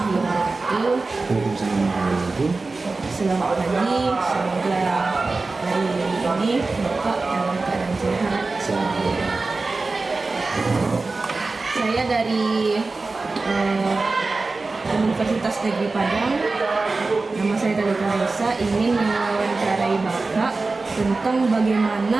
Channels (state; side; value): quieter; left; 3.6 dB